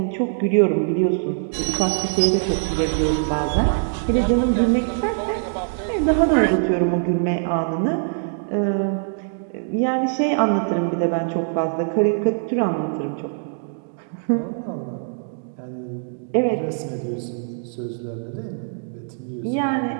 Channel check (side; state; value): left; silent; digital silence